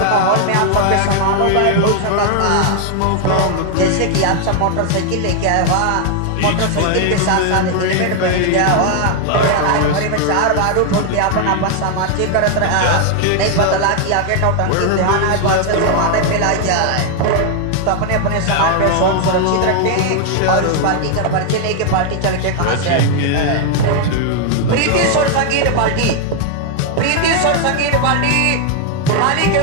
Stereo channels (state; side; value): different; both; correlation 0.00